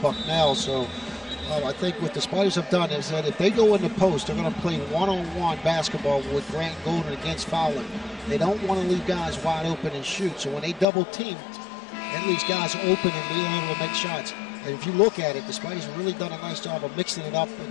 So I think what the Spiders have done is that if they go in the post, they're going to play one-on-one basketball with Grant Golden against Fallon. They don't want to leave guys wide open and shoot. So when they double team, that leaves guys open and being able to make shots. And if you look at it, the Spiders have really done a nice job of mixing it up in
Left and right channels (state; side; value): drops out; right; at 10.9 s